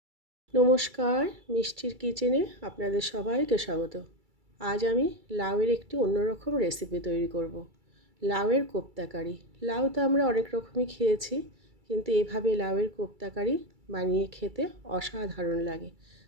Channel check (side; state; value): left; late; 2.3 ms